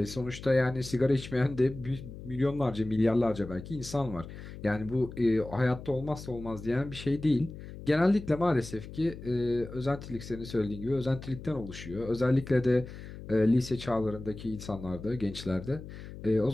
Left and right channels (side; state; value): left; noise; hum, 13 dB below the sound